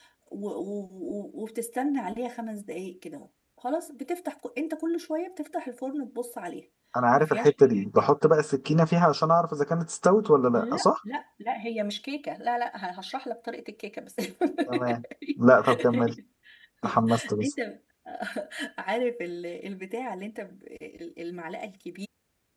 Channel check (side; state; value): both; identical; correlation 1.00